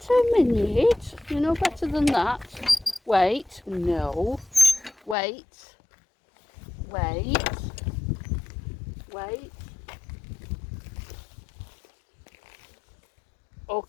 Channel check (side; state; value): right; drops out; at 5.2 s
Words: a minute. You know better than that. Wait. No. Wait. Wait. Wait.